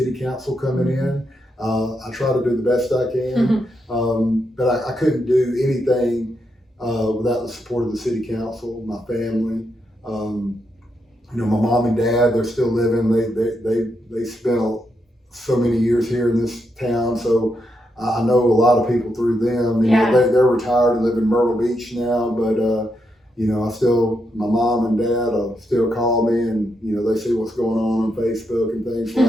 council coming in. I try to do the best I can, but I couldn't do anything without the support of the city council, my family. My mom and dad, they're still living. They spent so many years here in this town, so I know a lot of people through them. They're retired and live in Myrtle Beach now, but my mom and dad still call me, and they see what's going on Facebook and things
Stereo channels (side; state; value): both; normal; correlation 0.82